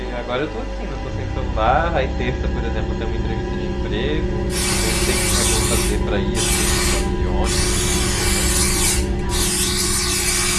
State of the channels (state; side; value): identical; both; correlation 1.00